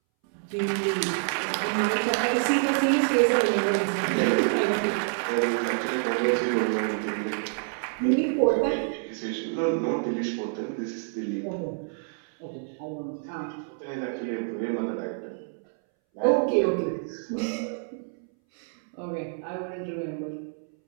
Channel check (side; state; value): left; silent; 60 dB below the other